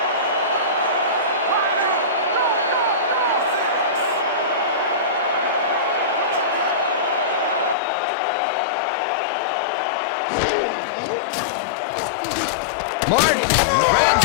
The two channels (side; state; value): right; drops out; at 7.8 s